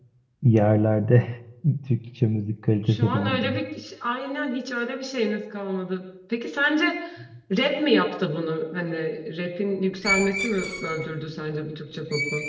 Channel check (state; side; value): identical; both; correlation 1.00